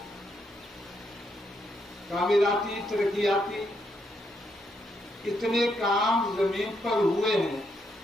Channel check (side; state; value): both; normal; correlation 0.78